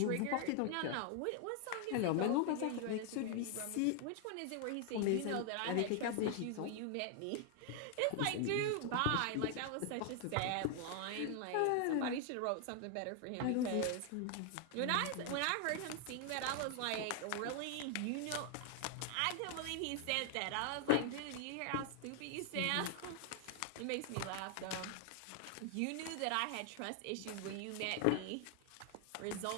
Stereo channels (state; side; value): different; both; correlation 0.00